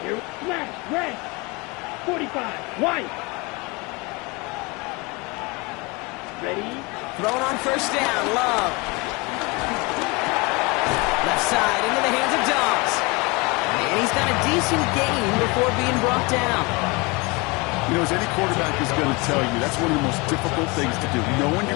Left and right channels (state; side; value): quieter; right; 26.7 dB